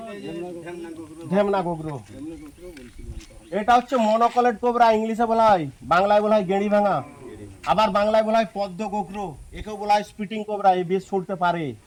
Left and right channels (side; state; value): both; identical; correlation 1.00